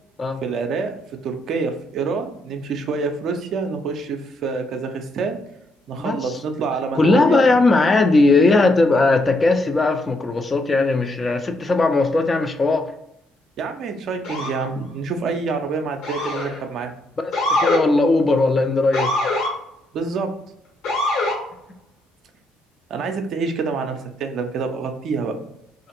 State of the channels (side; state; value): both; normal; correlation 0.75